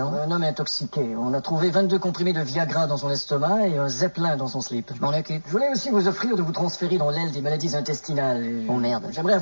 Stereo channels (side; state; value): both; inverted; correlation -1.00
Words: Un homme intoxiqué. On a trouvé 22 comprimés de Viagra dans son estomac et un Zeppelin dans son slip. Je m'en occupe. Je voulais aussi vous offrir de vous transférer dans l'aile des maladies intestinales. Oh, merde. J'aimerais